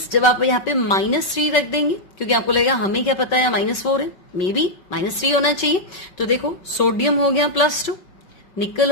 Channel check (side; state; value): right; late; 5.3 ms